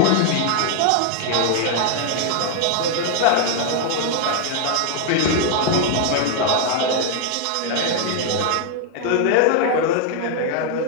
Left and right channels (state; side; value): different; both; correlation 0.00